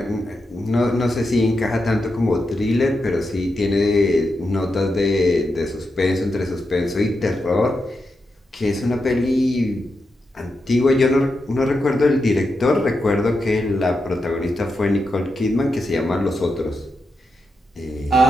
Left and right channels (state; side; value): normal; both; correlation 0.87